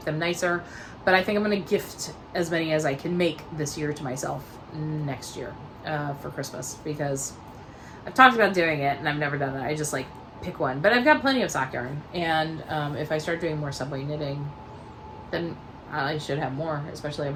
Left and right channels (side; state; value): both; identical; correlation 1.00